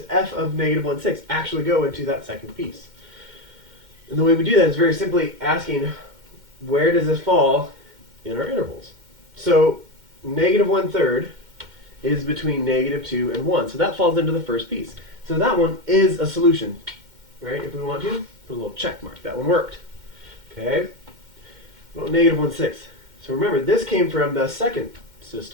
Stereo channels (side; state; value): left; late; 2.1 ms